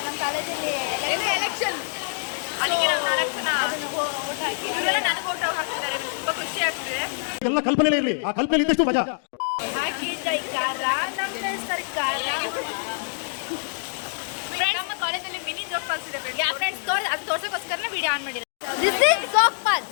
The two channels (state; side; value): silent; right; digital silence